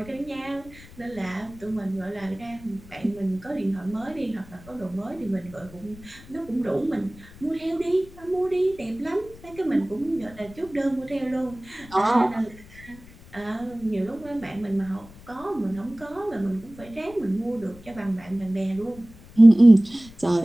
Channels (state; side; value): noise; left; rumble, 21 dB below the sound